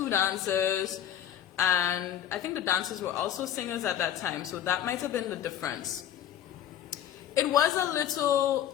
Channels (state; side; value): quieter; right; 10.5 dB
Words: dancers. And I think the dancers were also singers at that time. So that might have been the difference. It was a